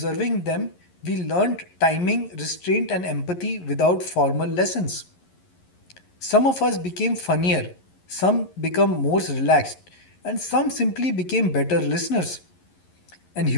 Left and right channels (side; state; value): right; late; 11 ms